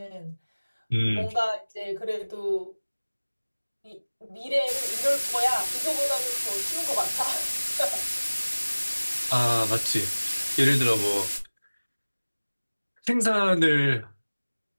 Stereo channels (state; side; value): inverted; both; correlation -1.00